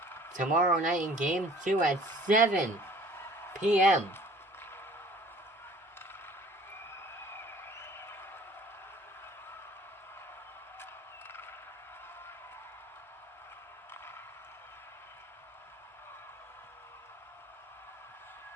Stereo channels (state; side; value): normal; both; correlation 0.51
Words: tomorrow night in Game 2 at 7 p.m.